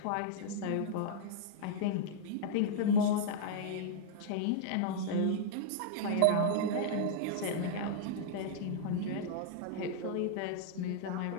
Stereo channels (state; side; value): different; both; correlation -0.01